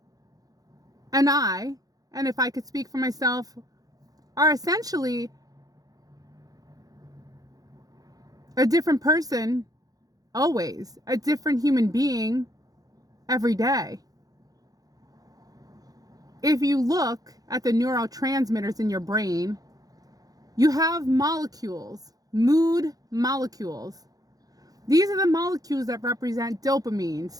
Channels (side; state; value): left; late; 0.18 ms